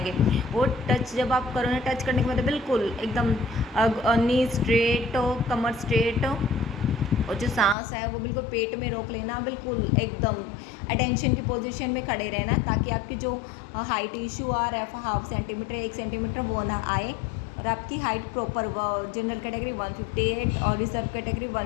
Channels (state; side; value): drops out; right; at 7.8 s